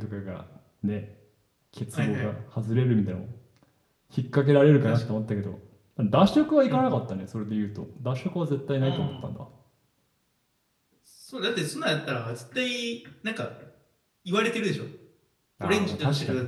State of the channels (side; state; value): both; identical; correlation 1.00